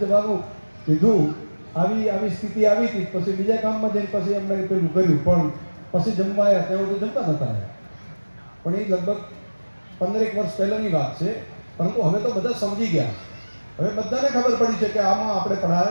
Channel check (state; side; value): inverted; both; correlation -1.00